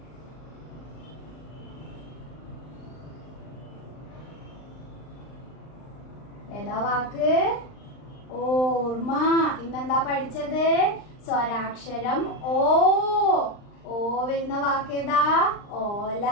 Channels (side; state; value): right; late; 39 ms